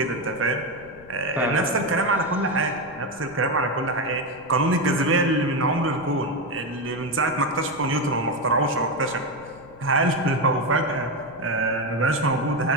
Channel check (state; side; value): noise; left; rumble, 23 dB below the sound